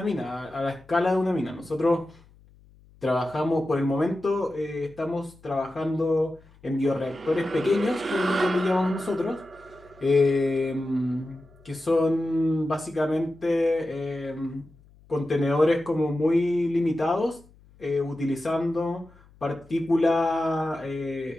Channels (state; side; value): noise; left; hum, 27 dB below the sound